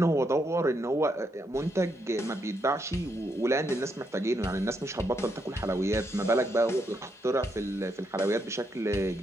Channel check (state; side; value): normal; both; correlation 0.79